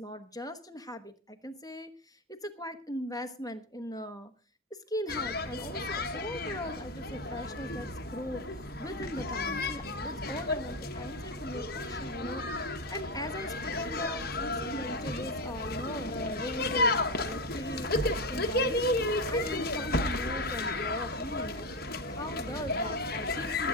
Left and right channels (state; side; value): normal; both; correlation 0.13